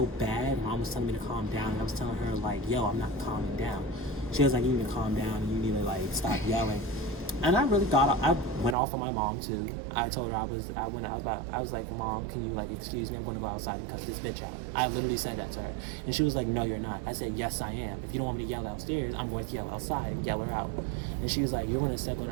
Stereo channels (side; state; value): left; drops out; at 8.8 s